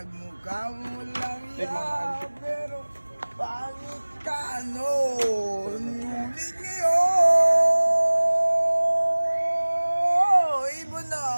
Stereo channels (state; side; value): inverted; both; correlation -1.00